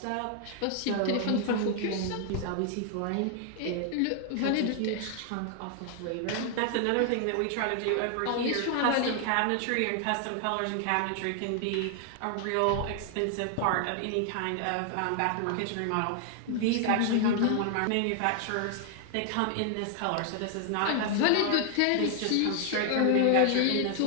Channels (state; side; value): different; both; correlation 0.00